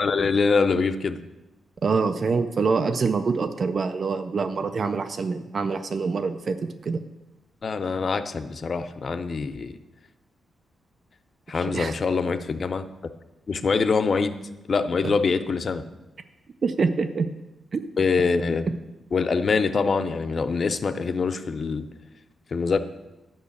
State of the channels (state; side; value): normal; both; correlation 0.85